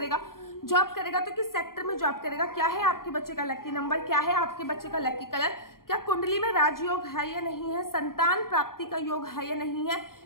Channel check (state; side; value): late; right; 0.92 ms